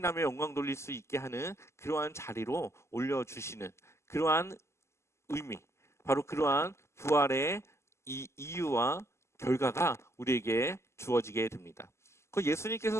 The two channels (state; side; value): late; right; 0.13 ms